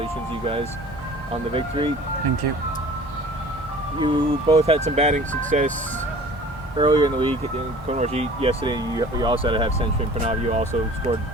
you guys, on the victory. Thank you. You both had some batting success earlier in the week. Kunwarjeet, yesterday, you also had a half century, and Prannav, you also scored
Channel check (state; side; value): normal; both; correlation 0.46